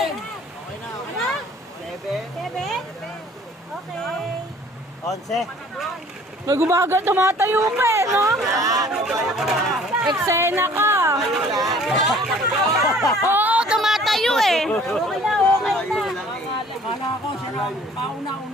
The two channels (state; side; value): normal; both; correlation 0.53